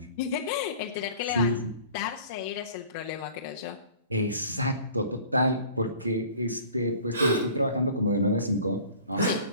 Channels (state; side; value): inverted; both; correlation -0.47